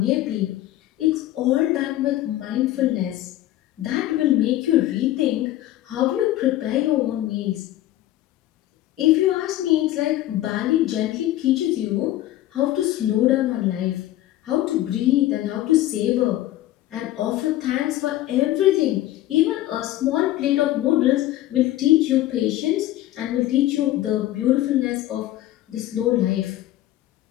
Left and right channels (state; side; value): quieter; right; 14.8 dB